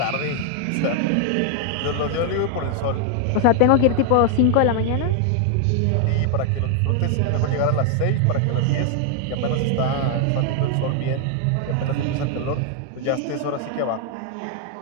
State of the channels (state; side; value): different; both; correlation 0.00